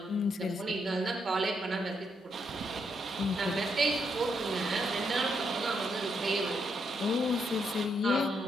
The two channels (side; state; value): both; normal; correlation 0.78